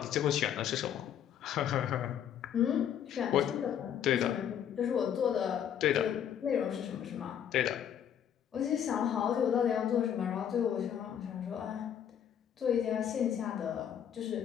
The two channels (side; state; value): right; quieter; 9.3 dB